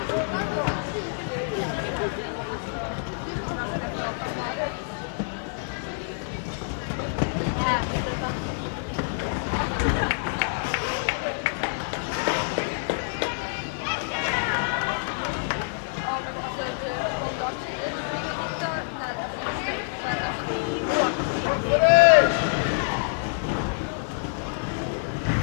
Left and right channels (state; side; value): silent; right; 60 dB below the other